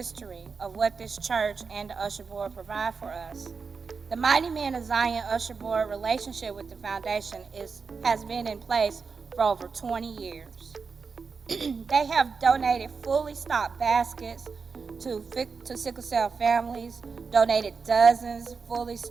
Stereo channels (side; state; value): left; quieter; 5.1 dB